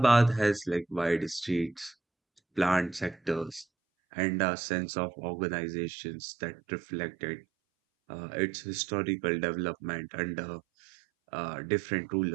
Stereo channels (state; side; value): drops out; left; at 3.7 s